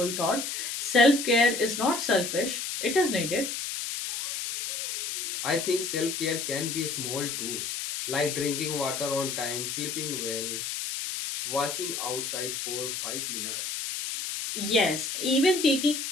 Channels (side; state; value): left; noise; hiss, 4 dB below the sound